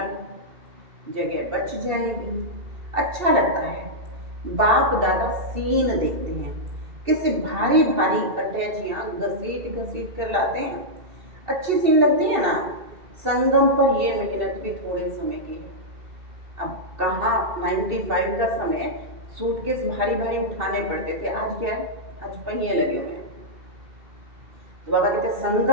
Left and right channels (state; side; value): late; left; 2.7 ms